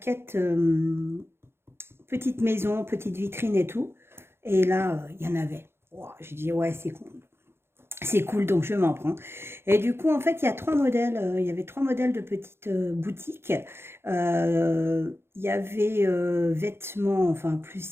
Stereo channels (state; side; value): late; left; 0.12 ms